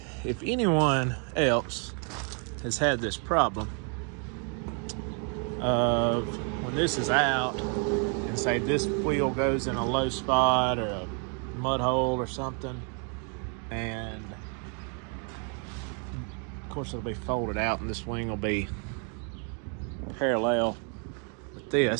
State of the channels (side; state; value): left; quieter; 39.7 dB